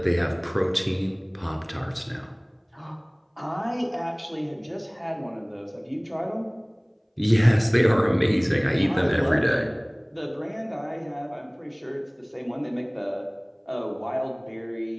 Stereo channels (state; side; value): identical; both; correlation 1.00